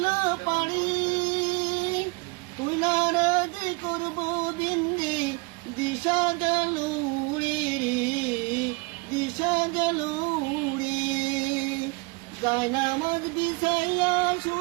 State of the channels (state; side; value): quieter; left; 27.5 dB